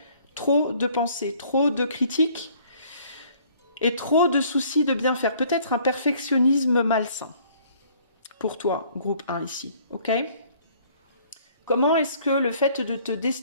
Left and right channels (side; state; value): both; inverted; correlation -0.58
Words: trop de pensées, trop de critiques et trop de soucis de bien faire. Peut-être un perfectionnisme malsain pour toi, groupe 1 ici, ok? Comment est-ce que le fait de te